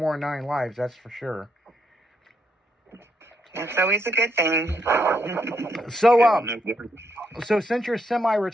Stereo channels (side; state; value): both; normal; correlation 0.77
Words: than 9 lives, that's for sure. That's always a good thing. So since you're